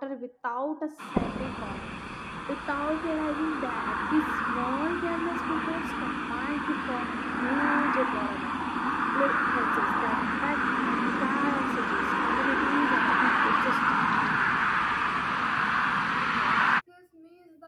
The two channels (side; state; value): both; identical; correlation 1.00